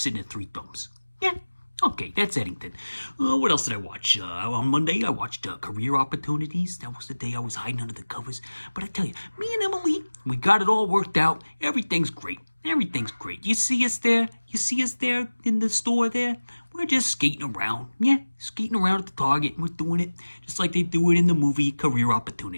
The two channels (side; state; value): both; inverted; correlation -1.00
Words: at 3 thumbs. Yeah. Okay, that's Eddington. What else did I watch? On Monday, I watched Career Opportunities. That was the day I was hiding under the covers. But I tell you, me and Emily, we got it all worked out. Everything's great. Everything's great. You see us there? You see us there in the store there? We're just skating around. Yeah, skating around at the Target. And we're doing it just like they do it in the movie Career